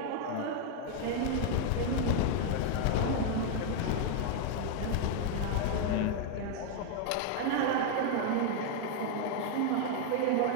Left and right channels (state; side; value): different; both; correlation 0.00